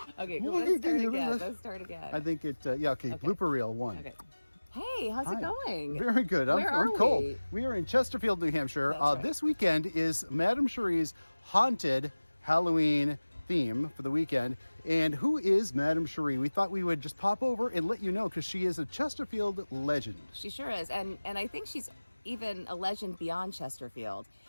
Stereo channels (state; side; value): inverted; both; correlation -1.00